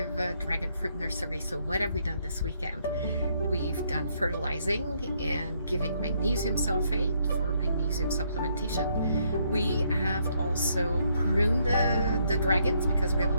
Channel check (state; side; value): inverted; both; correlation -0.72